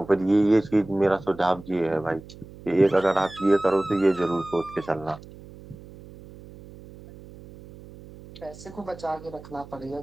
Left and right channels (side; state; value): right; noise; hum, 18 dB below the sound